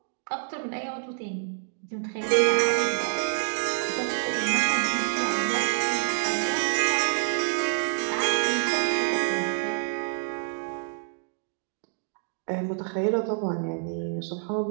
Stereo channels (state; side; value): silent; left; digital silence